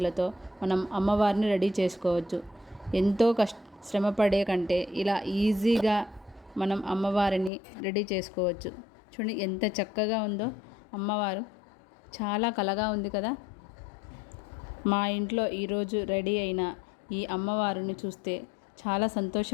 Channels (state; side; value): drops out; right; at 7.5 s